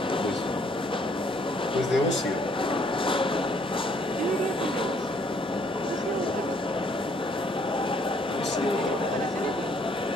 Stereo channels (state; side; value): normal; both; correlation 0.65